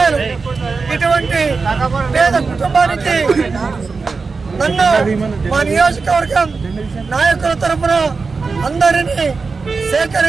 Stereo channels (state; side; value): quieter; left; 4.5 dB